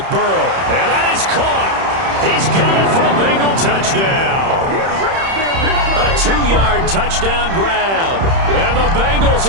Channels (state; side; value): late; left; 31 ms